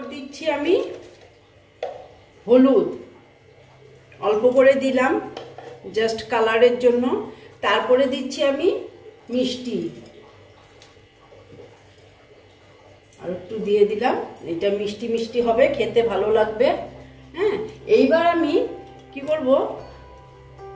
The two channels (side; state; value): both; identical; correlation 1.00